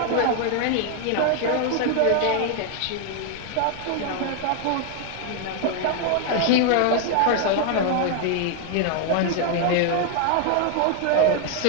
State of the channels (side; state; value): both; different; correlation 0.00